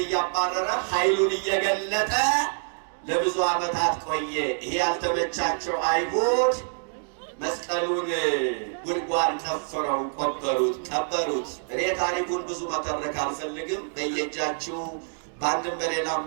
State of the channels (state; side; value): silent; left; 61 dB below the other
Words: እያባረረ ኃይሉን እየገለጠ ለብዙ ዓመታት ቆየ። ይሄ ያልተመቻቸው አይሁድ መስቀሉን ጉድጓድ ቆፍረው ቀበሩት። እኔ ታሪኩን ብዙ መተረክ አልፈልግም። በየእጃችሁ በአንድም በሌላም